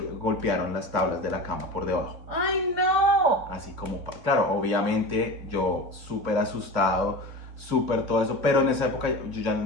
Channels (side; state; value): left; late; 3.1 ms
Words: las tablas de la cama por debajo. ¡Ay, no! Así como, claro, obviamente yo súper asustado, súper todo eso, pero en esa época